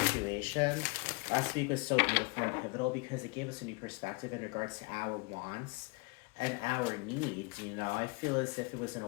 Last week was so beautiful and pivotal because it gave us a new perspective in regards to our wants and our needs. You know, I feel as if it was an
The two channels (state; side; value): quieter; right; 29.1 dB